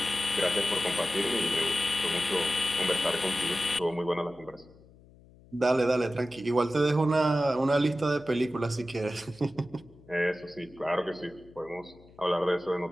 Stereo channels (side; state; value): left; noise; hum, 25 dB below the sound